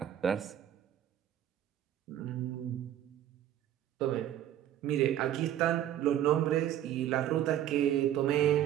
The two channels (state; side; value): quieter; left; 11.5 dB